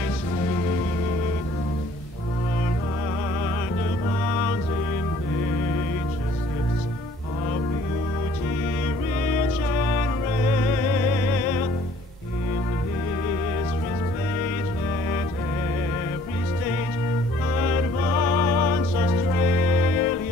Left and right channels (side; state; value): both; normal; correlation 0.57